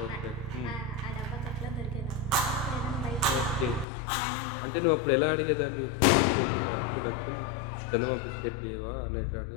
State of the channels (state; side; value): drops out; right; at 3.9 s